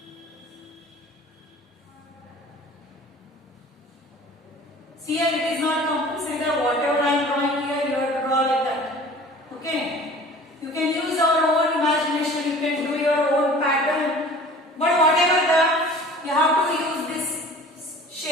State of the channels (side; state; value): both; normal; correlation 0.45